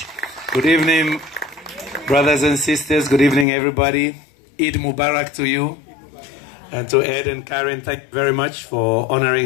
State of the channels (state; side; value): drops out; right; at 3.5 s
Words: Good evening, brothers and sisters. Good evening, everybody. Eid Mubarak to you. And to Ed and Karen, thank you very much for